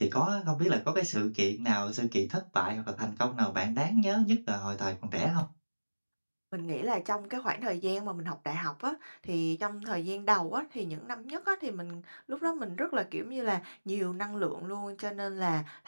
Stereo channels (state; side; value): inverted; both; correlation -1.00